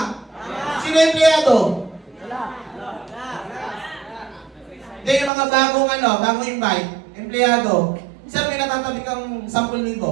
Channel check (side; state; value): left; drops out; at 5.3 s